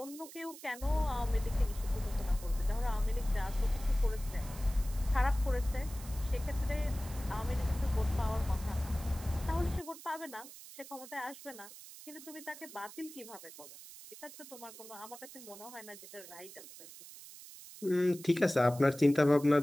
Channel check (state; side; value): noise; right; hiss, 16 dB below the sound